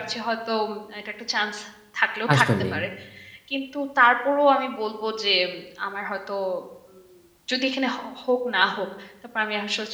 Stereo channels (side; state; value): both; identical; correlation 1.00